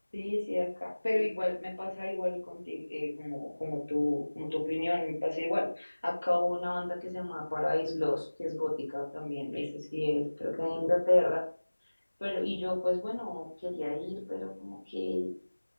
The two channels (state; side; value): inverted; both; correlation -1.00